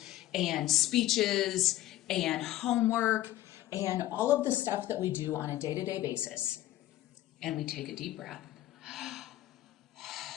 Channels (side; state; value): right; quieter; 14.5 dB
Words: and speeches and homework and all of the stuff that we do on a day-to-day basis. And we take a deep breath.